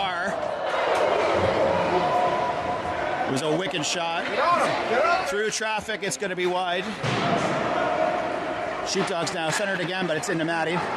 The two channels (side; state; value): both; identical; correlation 1.00